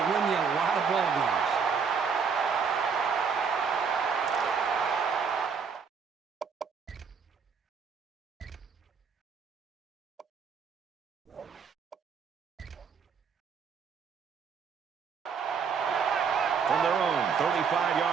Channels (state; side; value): quieter; left; 6.0 dB